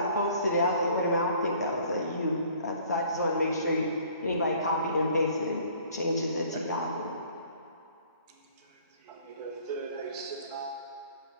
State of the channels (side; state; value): both; inverted; correlation -0.55